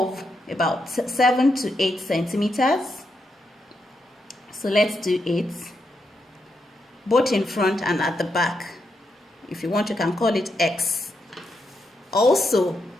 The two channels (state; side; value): normal; both; correlation 0.82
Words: about 7 to 8 centimeters. So let's do 8. Both in front and at the back. If you want, you can call it X. Also,